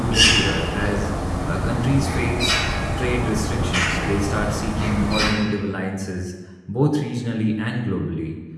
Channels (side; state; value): both; identical; correlation 1.00